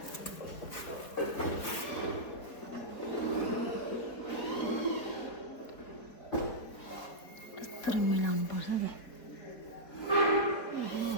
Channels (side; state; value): right; late; 3.9 ms